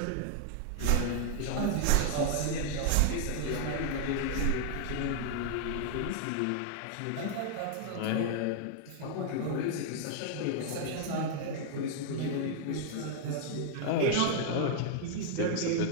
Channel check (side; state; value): both; different; correlation -0.01